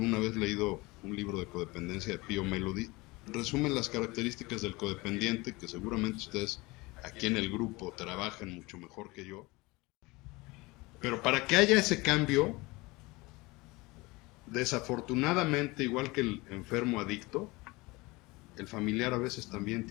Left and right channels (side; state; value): right; quieter; 23.1 dB